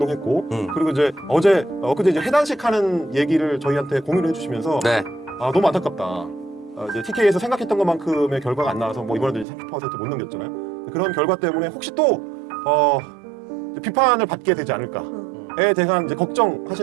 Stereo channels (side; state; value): left; drops out; at 9.5 s